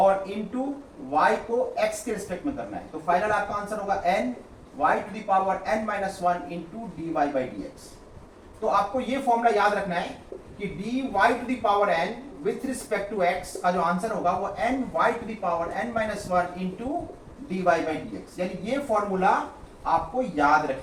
इनटू y को x के रिस्पेक्ट में करना है, तो फाइनल आपका आंसर होगा n y to the power n minus 1 into dy by dx। तो आपको ये फॉर्मूला याद रखना है कि dy to the power n with respect to x का जो आंसर होगा वो n y to the power n minus 1 into dy by dx, यानी ये फॉर्मूला आपको याद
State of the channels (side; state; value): both; identical; correlation 1.00